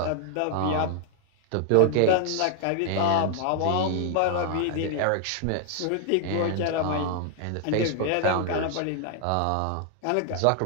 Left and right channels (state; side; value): different; both; correlation 0.00